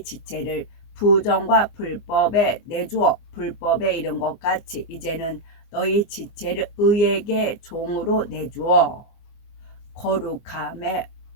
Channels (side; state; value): right; late; 24 ms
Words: 지체를 부정과 불법에 내주어 불법에 이른 것 같이 이제는 너희 지체를 의에게 종으로 내주어 거룩함에